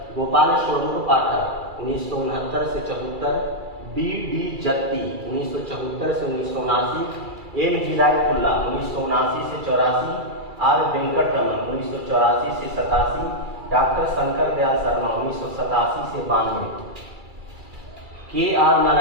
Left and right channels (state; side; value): late; left; 2.3 ms